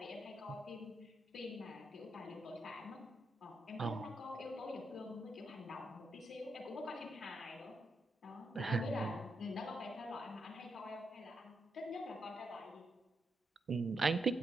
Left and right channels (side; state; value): both; normal; correlation 0.82